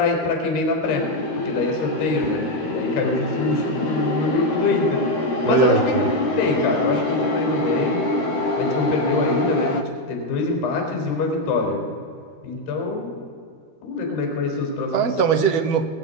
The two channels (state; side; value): late; right; 13 ms